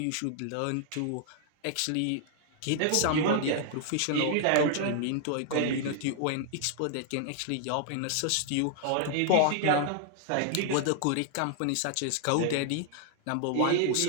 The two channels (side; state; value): both; different; correlation 0.00